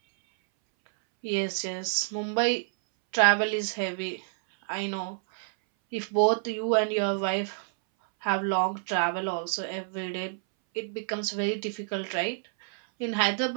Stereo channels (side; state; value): left; silent; 59 dB below the other